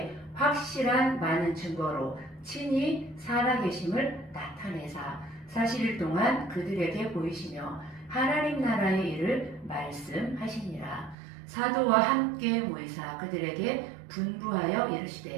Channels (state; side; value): drops out; left; at 11.2 s